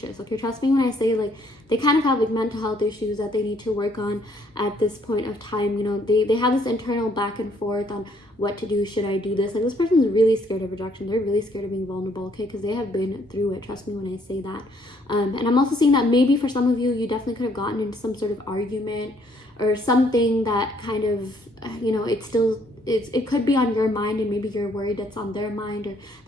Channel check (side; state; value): both; normal; correlation 0.66